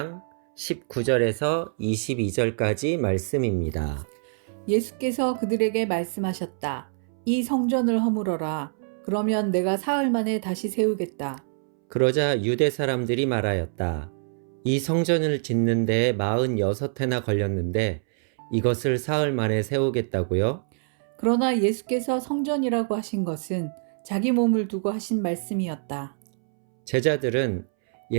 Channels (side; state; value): left; silent; 61 dB below the other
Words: 19절에서 22절까지 말씀입니다. 예수께서 그들에게 말씀하셨다. 이 성전을 허물어라. 그러면 내가 사흘 만에 다시 세우겠다. 그러자 유대 사람들이 말하였다. 이 성전을 짓는 데에 46해나 걸렸는데 이것을 사흘 만에 세우겠다고요? 그러나 예수께서 성전이라고 하신 것은 자기 몸을 두고 하신 말씀이었다. 제자들은